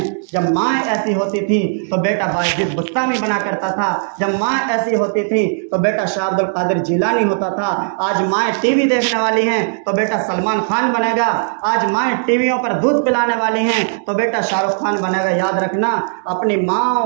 जब माँ ऐसी होती थी तो बेटा बायजीद बुस्तामी बना करता था। जब माँ ऐसी होती थी तो बेटा शाह अब्दुल कादिर जिलानी होता था। आज माँ टीवी देखने वाली हैं तो बेटा सलमान खान बनेगा। आज माँ टीवियों पर दूध पिलाने वाली हैं तो बेटा शाहरुख खान बनेगा। याद रखना, अपनी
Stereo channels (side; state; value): left; silent; 68 dB below the other